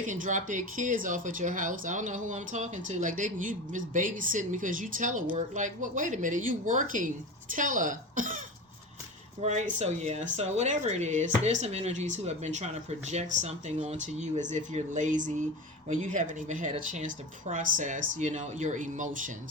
can drop their kids off at your house. I don't know who I'm talking to. Like, you just babysitting because you telework. Like, what? Wait a minute, you working tele, right? So yeah. So whatever it is, there's some energies who have been trying to project something onto you as if you're lazy, when you haven't even had a chance to process, your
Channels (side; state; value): both; normal; correlation 0.28